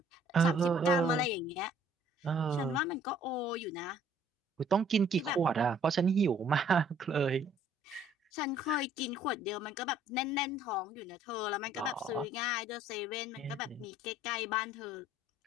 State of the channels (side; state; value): both; normal; correlation 0.59